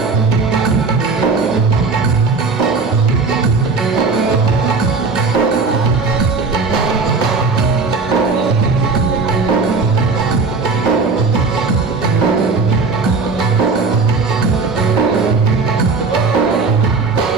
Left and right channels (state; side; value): quieter; left; 4.3 dB